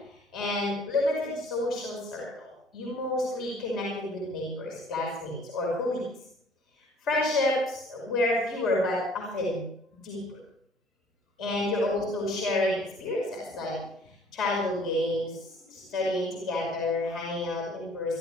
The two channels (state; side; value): normal; both; correlation 0.56